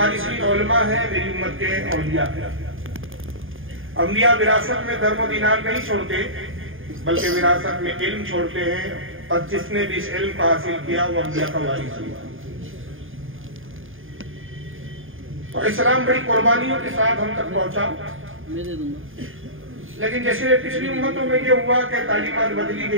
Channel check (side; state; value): left; late; 0.59 ms